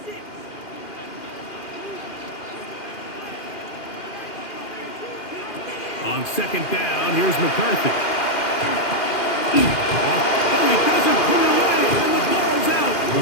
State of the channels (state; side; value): late; right; 2.4 ms